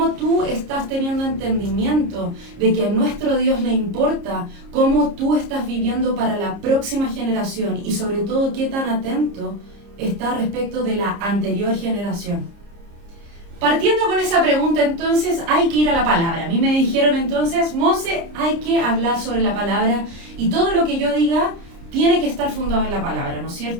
tú estás teniendo entendimiento de que a nuestro Dios le importa? ¿Cómo tú estás viviendo para la próxima generación? Y sobre todo, ¿qué tan atento estás respecto de la anterior generación? Partiendo con esa pregunta, entonces, hay que ir a la palabra. A mí me dijeron entonces, Monse, hay que hablar sobre la palabra y todo lo que yo diga tiene que estar fundado en la palabra, ¿no es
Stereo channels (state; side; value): late; left; 30 ms